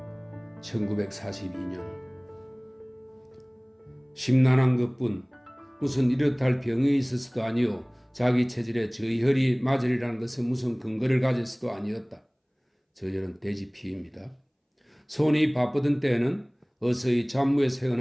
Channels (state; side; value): identical; both; correlation 1.00